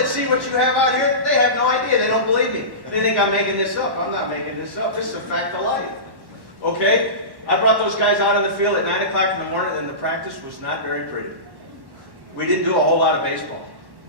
see what you have out here, they have no idea. They don't believe me. They think I'm making this up. I'm not making this up. This is a fact of life. Okay? I brought those guys out in the field at 9 o'clock in the morning, and the practice was not very pretty. We didn't do a whole lot of baseball.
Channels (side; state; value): left; late; 1.1 ms